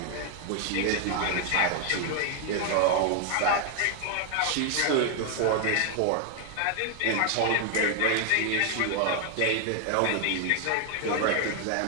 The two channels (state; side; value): different; both; correlation 0.01